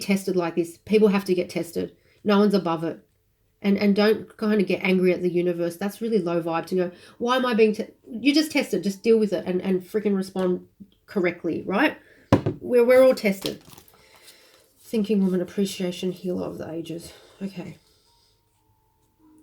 like this. People have to get tested. No one's above it. And don't kind of get angry at the universe. That's really low vibe to go, why am I being you just tested, just deal with it and freaking respond correctly, right? We're all tested. Thinking Woman Appreciation Healer of the Ages. Okay.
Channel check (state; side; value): identical; both; correlation 1.00